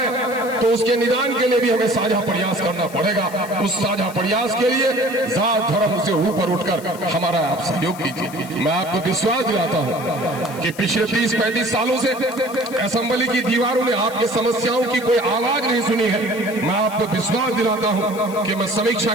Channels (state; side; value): noise; left; hiss, 18 dB below the sound